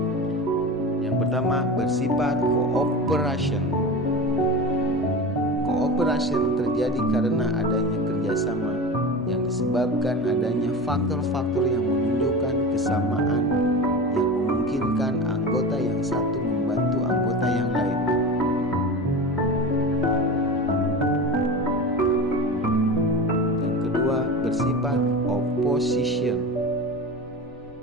Yang pertama bersifat cooperation. Cooperation terjadi karena adanya kerjasama yang disebabkan adanya faktor-faktor yang menunjukkan kesamaan yang memungkinkan anggota yang satu membantu anggota yang lain. Yang kedua bersifat opposition.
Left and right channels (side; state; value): both; normal; correlation 0.29